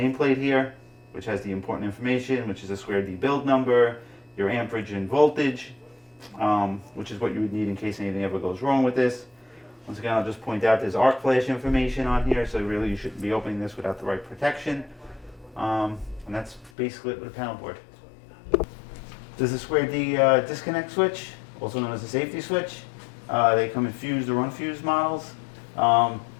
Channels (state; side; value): drops out; right; at 16.7 s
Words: here which has the important information, which is a square D build number, your amperage and voltage, which is what you would need in case anything ever goes wrong with this. Once again, I'll just point out there's arc flash information on here, so really you shouldn't be opening this without the right protection. And that's basically it with a panel board. This is a square D disconnect switch, also known as a safety switch. They come in fused or unfused models. And